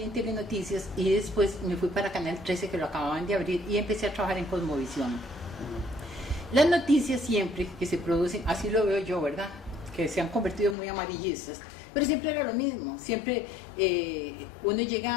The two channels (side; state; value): right; drops out; at 10.8 s